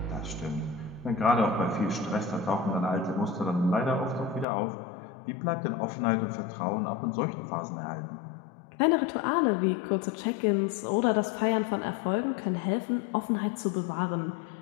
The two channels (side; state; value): right; drops out; at 4.5 s